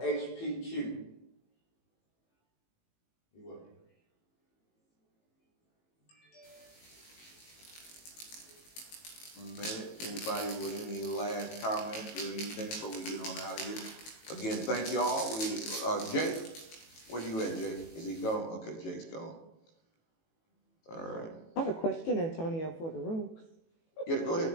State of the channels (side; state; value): right; late; 18 ms